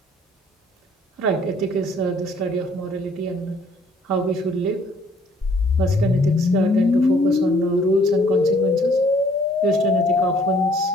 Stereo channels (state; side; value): normal; both; correlation 0.61